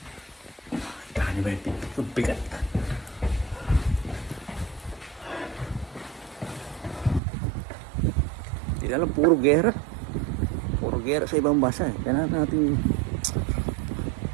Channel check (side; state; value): left; drops out; at 7.2 s